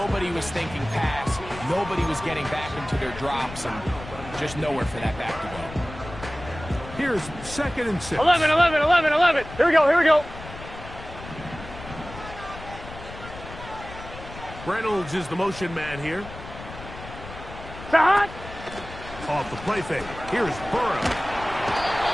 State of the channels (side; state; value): left; noise; rumble, 13 dB below the sound